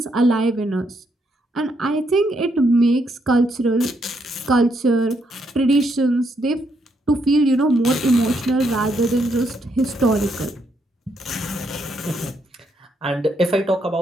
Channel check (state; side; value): normal; both; correlation 0.76